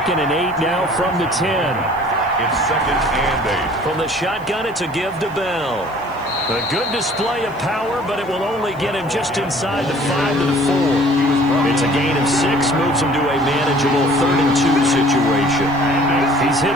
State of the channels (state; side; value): noise; right; hiss, 29 dB below the sound